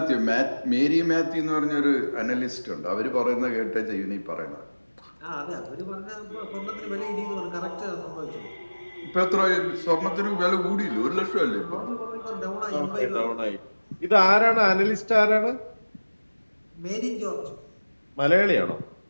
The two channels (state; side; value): inverted; both; correlation -1.00